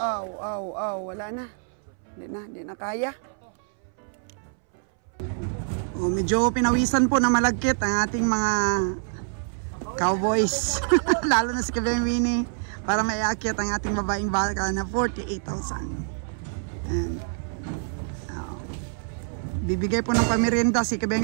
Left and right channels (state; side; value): silent; left; 61 dB below the other